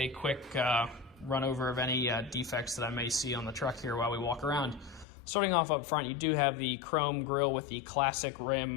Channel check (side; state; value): right; drops out; at 5.1 s